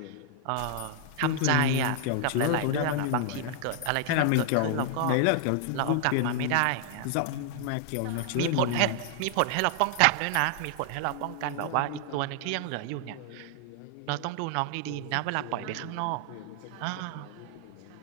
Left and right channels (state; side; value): different; both; correlation 0.00